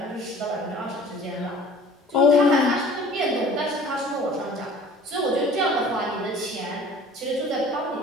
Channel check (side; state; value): both; normal; correlation 0.48